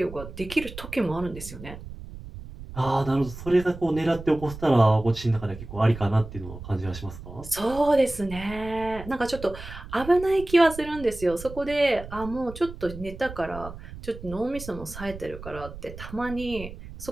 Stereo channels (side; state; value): right; noise; rumble, 13 dB below the sound